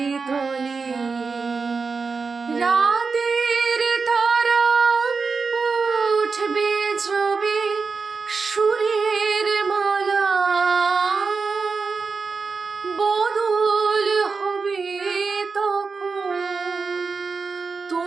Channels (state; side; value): quieter; left; 4.7 dB